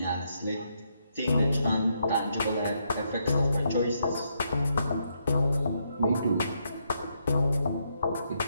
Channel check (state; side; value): inverted; both; correlation -0.77